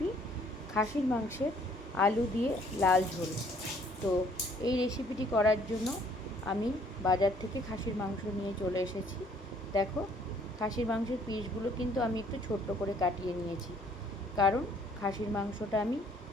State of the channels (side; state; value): both; normal; correlation 0.61